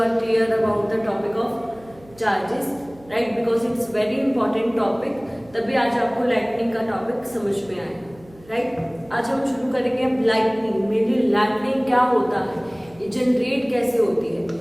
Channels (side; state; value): right; noise; hum, 25 dB below the sound